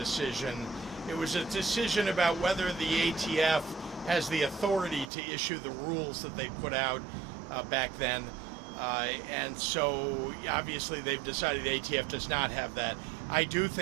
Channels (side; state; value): left; drops out; at 5.1 s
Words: It was a decision about whether the ATF has the authority to issue the rules that they put out back then. And so obviously they've decided the ATF does not have that. I do